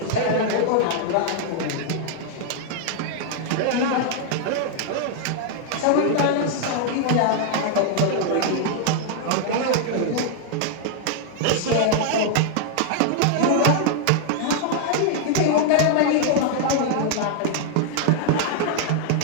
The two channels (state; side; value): different; both; correlation 0.00